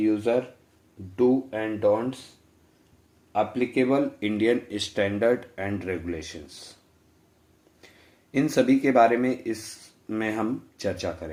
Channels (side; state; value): both; identical; correlation 1.00